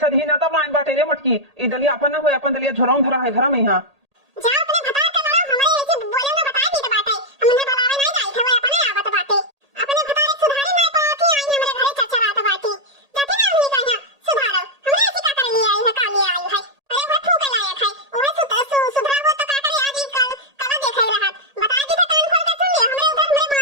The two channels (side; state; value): left; late; 1.8 ms